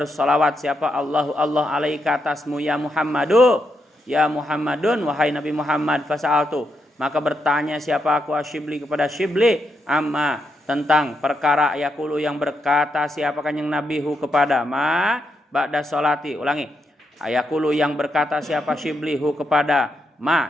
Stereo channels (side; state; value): both; normal; correlation 0.82